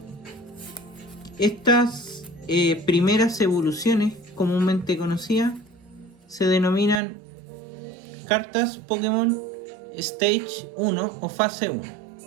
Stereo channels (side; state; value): left; drops out; at 7.0 s